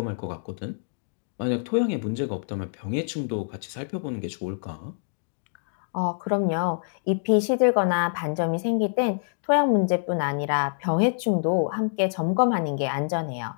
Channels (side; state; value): right; silent; digital silence